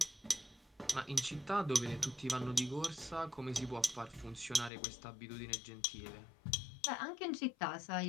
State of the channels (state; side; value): drops out; right; at 4.7 s